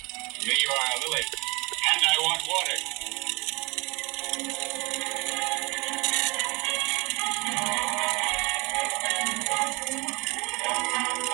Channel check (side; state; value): left; quieter; 27.4 dB